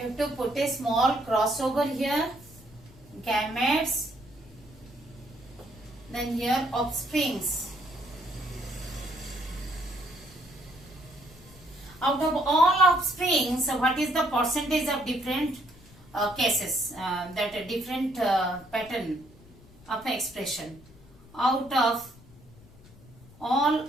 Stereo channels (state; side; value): noise; left; rumble, 23 dB below the sound